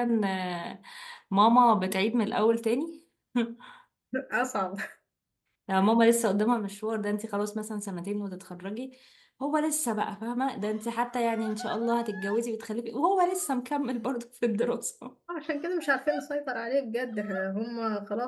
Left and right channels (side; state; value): both; identical; correlation 1.00